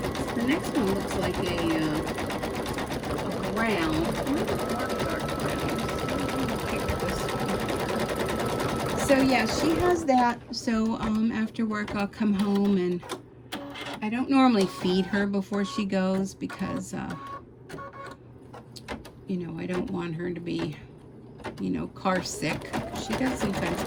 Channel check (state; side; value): identical; both; correlation 1.00